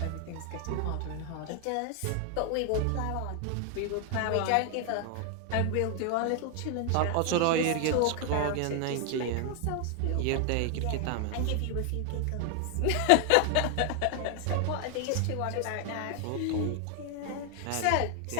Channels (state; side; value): different; both; correlation 0.00